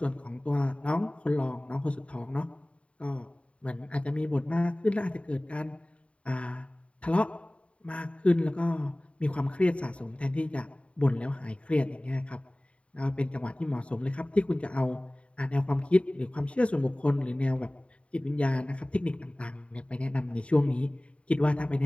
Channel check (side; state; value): right; late; 0.062 ms